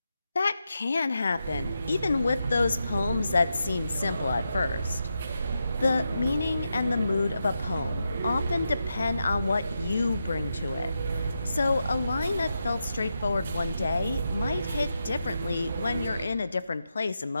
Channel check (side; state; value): both; inverted; correlation -0.87